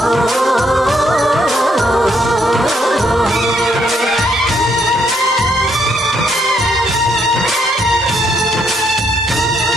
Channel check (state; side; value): normal; both; correlation 0.73